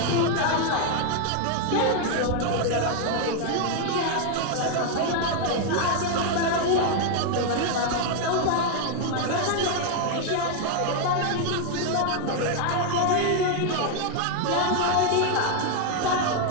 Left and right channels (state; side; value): different; both; correlation 0.00